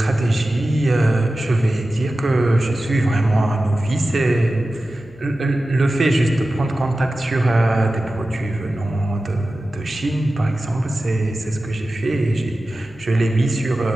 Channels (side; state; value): right; noise; hum, 26 dB below the sound